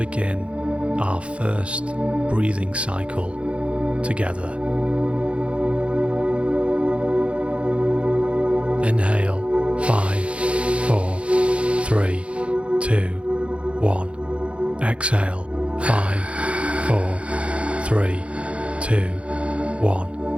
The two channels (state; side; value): late; left; 0.060 ms